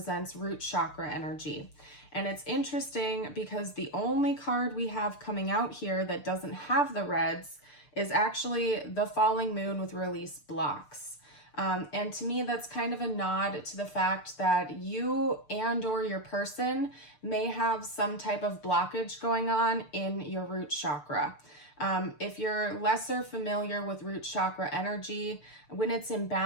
root chakra energy. And it's interesting because the only card we have coming out here that doesn't have the reds is actually the falling moon with release blocks. And to me, that's kind of a nod to the fact that you and or your person may have some type of blockage going on in your root chakra. If you're lesser familiar with root chakra energy, when it's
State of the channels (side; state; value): right; late; 6.8 ms